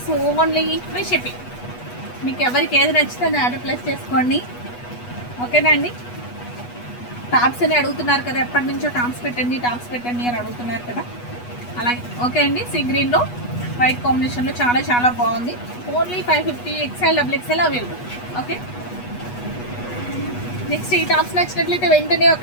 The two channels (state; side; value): late; right; 8.2 ms